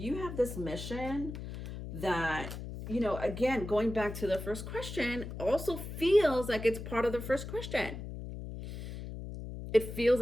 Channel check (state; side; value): noise; left; hum, 8 dB below the sound